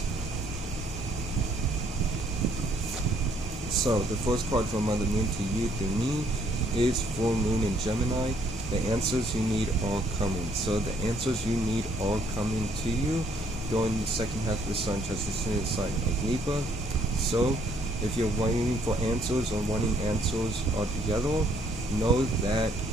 So, the first card from Mother Moon to you through me is Full Moon in Gemini. The answers you need are coming. So, the answers you need are coming to you during the second half of the Sun transition in the sign of Libra. So, if you're waiting for answers or wanting answers altogether, know that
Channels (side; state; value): both; normal; correlation 0.66